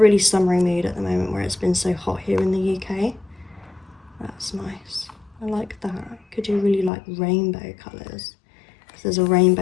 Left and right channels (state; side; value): drops out; right; at 6.9 s